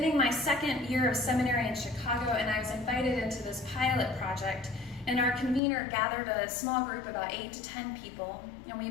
my second year of seminary in Chicago, and I was invited into this pilot project, and our convener gathered a small group, about 8 to 10 people, and we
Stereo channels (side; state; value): right; drops out; at 5.6 s